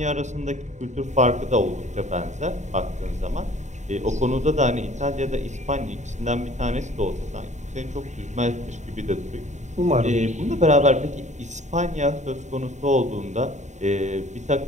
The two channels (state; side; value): late; left; 0.34 ms